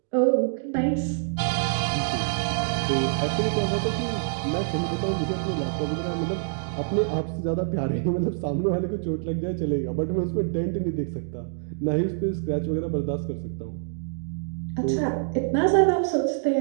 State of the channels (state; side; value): silent; left; digital silence